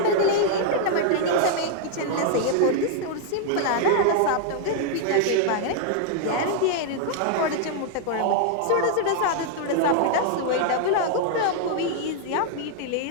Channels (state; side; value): different; both; correlation 0.00